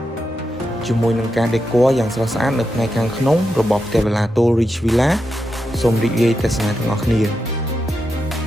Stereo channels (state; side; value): normal; both; correlation 0.87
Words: ជាមួយនឹងការ decor យ៉ាងស្រស់ស្អាតនៅផ្នែកខាងក្នុងរបស់ផ្ទះវិឡាតូល Rich Villa សូមរីករាយទស្សនាទាំងអស់គ្នា